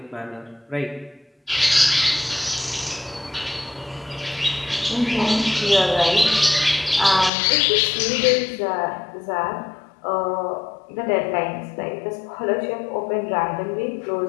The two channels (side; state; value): right; drops out; at 7.3 s